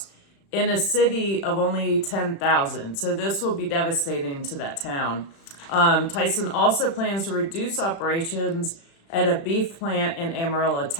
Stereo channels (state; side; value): late; right; 36 ms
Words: in a city of only 10,000. So this will be devastating to that town. Tyson also plans to reduce operations at a beef plant in Amarillo,